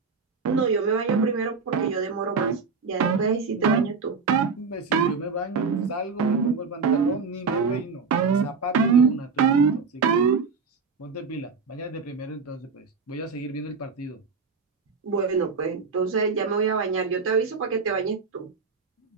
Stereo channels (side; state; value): left; quieter; 5.0 dB